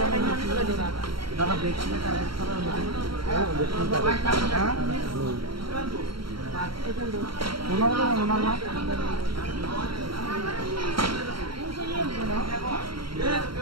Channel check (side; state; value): left; late; 0.73 ms